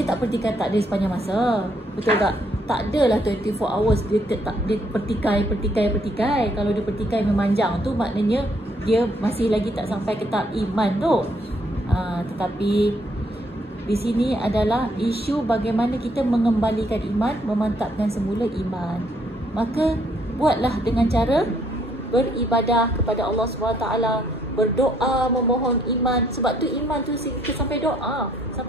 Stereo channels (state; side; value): normal; both; correlation 0.69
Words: tak pertikaikan takdir sepanjang masa. Betul tak? Tak adalah 24 hours dia pertikai. Kalau dia pertikai memanjang tu, maknanya dia masih lagi tak sampai ke tahap iman tu. Tetapi di sini adalah isu bagaimana kita mengembalikan iman, memantapkan semula iman. Maka buatlah dengan cara beribadah kepada Allah SWT, berdoa, memohon iman. Sebab tu iman tu kita sampai doa,